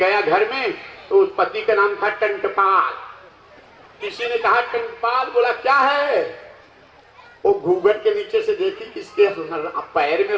घर में, तो उस पति का नाम था टंटपाल। किसी ने कहा टंटपाल, बोला क्या है? वो घूंघट के नीचे से देखी, किसके पैर में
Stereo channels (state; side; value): identical; both; correlation 1.00